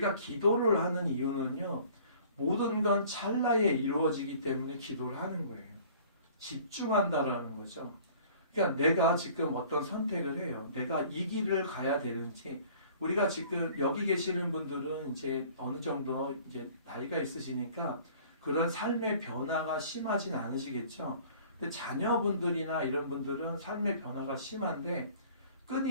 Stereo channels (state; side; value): inverted; both; correlation -0.50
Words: 기도를 하는 이유는요. 모든 건 찰나에 이루어지기 때문에 기도를 하는 거예요. 집중한다라는 거죠. 그러니까 내가 지금 어떤 선택을 해요. 내가 이 길을 가야 되는지 우리가 지금 여기 계시는 분들은 이제 어느 정도 이제 나이가 있으시니까 그런 삶의 변화가 심하진 않으시겠죠. 근데 자녀분들이나 이런 분들은 삶의 변화가 심한데